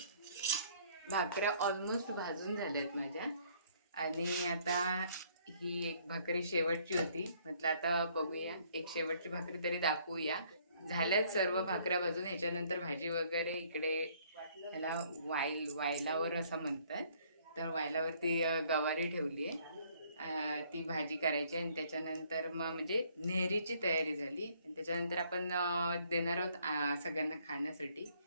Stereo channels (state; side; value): inverted; both; correlation -0.63